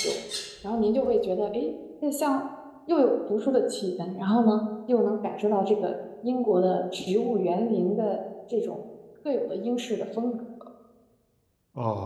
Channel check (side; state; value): both; identical; correlation 1.00